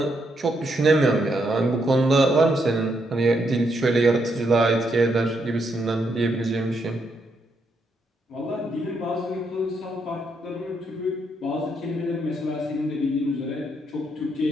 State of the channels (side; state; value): both; normal; correlation 0.77